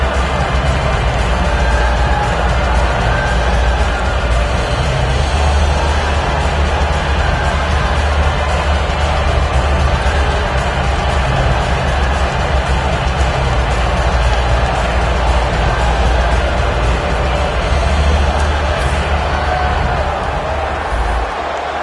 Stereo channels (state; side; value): identical; both; correlation 1.00